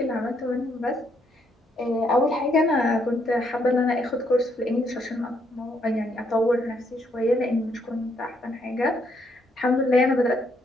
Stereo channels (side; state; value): both; normal; correlation 0.73